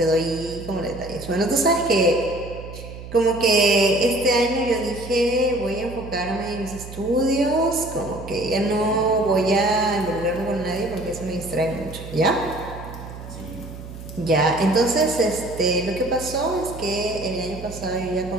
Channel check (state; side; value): noise; right; hum, 13 dB below the sound